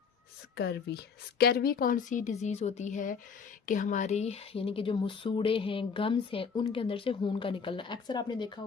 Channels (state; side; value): quieter; right; 5.9 dB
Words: स्कर्वी। स्कर्वी कौन सी डिज़ीज़ होती है कि हमारी यानी कि जो मसूड़े हैं, गम्स हैं, उनके अंदर से खून का निकलना। अक्सर आपने देखा